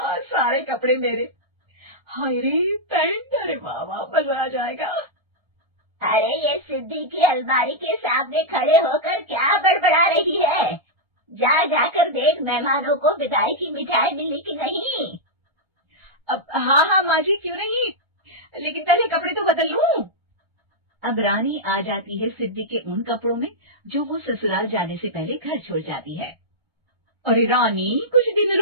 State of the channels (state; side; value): late; left; 1.3 ms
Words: सारे कपड़े मेरे। हाय रे पैंट, अरे वाह वाह, मजा आ जाएगा। अरे ये सिद्धि की अलमारी के सामने खड़े होकर क्या बड़बड़ा रही है? जाकर देख मेहमानों को विदाई की मिठाई मिली कि नहीं। अब हाँ हाँ माँ जी, क्यों नहीं, लेकिन पहले कपड़े तो बदल लूं। अब रानी आ जाती है सिद्धि के उन कपड़ों में जो वो ससुराल जाने से पहले घर छोड़ जाती है। अरे रानी, कुछ दिन